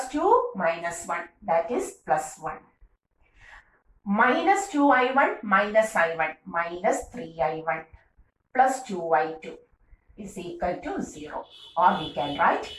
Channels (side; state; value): both; identical; correlation 1.00